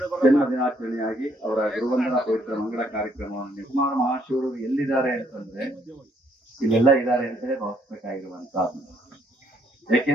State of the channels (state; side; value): normal; both; correlation 0.68